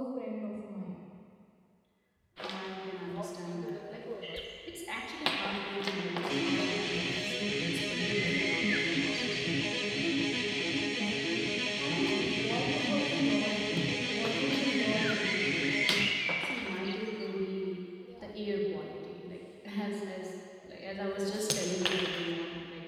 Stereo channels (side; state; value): both; identical; correlation 1.00